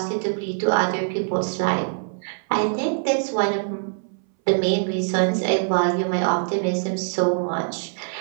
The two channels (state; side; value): silent; left; 60 dB below the other